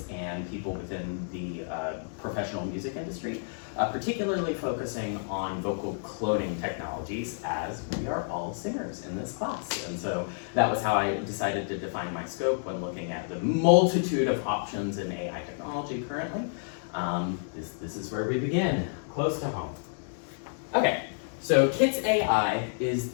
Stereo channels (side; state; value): right; silent; digital silence